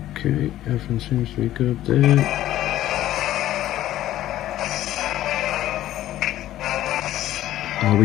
Okay, everything seems to be good there. Are we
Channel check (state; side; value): quieter; right; 13.6 dB